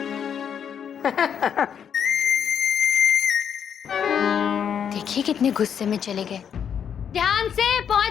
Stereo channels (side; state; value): right; quieter; 8.1 dB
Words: देखिए कितने गुस्से में चले गए। ध्यान से